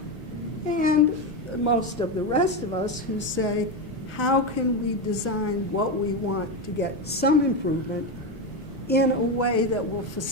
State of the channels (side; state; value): both; normal; correlation 0.13